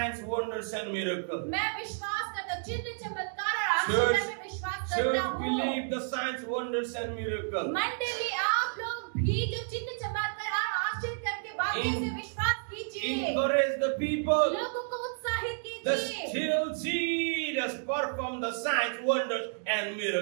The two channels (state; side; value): silent; left; digital silence